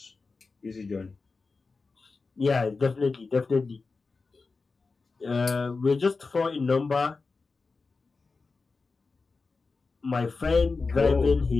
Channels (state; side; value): quieter; right; 4.1 dB